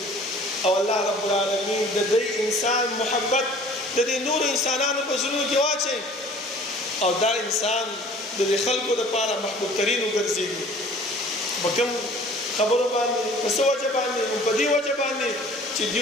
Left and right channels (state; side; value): normal; both; correlation 0.49